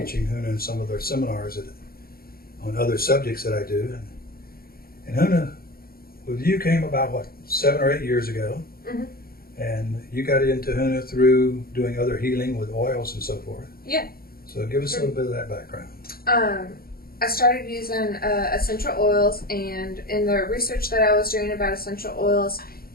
Huna in some of their seminars on other subjects that I do. And Huna, with you, came about, 7 or 8 years ago. Mm-hmm. And you got into Huna through doing other healing with oils and so forth. Yeah. So give us a little bit of that background. I started using essential oils, and in the research that I was doing about essential oils,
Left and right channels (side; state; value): right; late; 0.44 ms